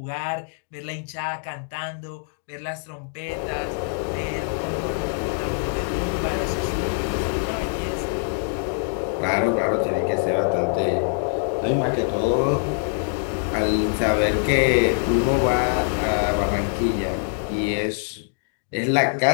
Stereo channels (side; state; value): right; silent; digital silence